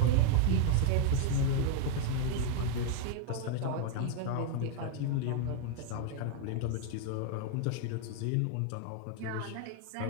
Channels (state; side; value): different; both; correlation 0.00